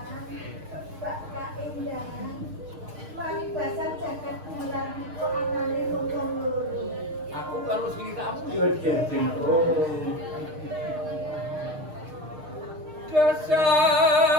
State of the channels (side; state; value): left; late; 6.5 ms